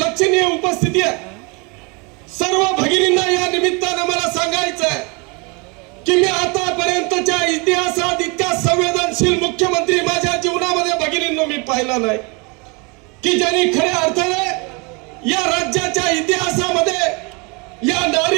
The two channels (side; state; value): left; quieter; 30.4 dB